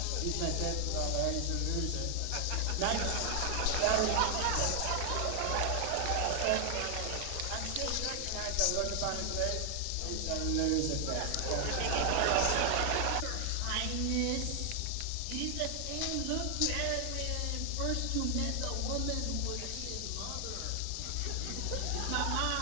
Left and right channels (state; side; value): different; both; correlation 0.00